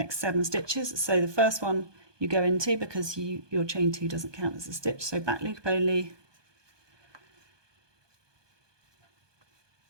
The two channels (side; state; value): left; late; 1.2 ms